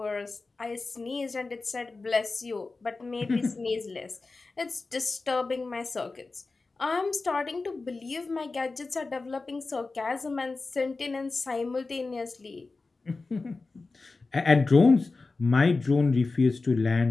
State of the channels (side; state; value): right; quieter; 3.7 dB